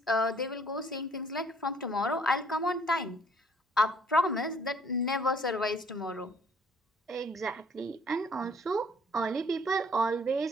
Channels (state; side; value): normal; both; correlation 0.60